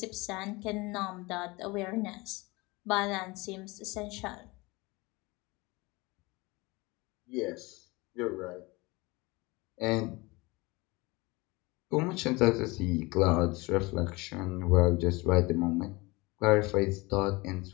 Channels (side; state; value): right; quieter; 23.7 dB